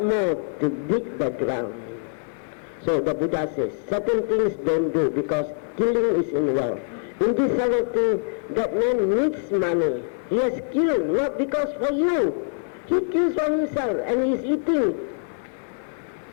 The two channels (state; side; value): silent; right; digital silence